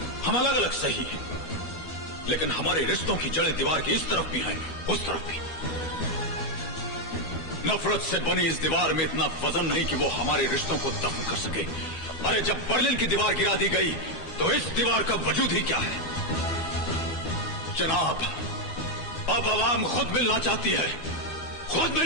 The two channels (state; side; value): late; right; 2.7 ms